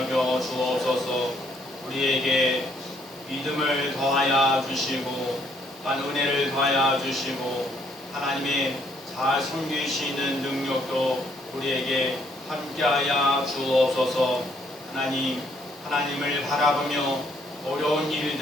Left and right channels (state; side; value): normal; both; correlation 0.68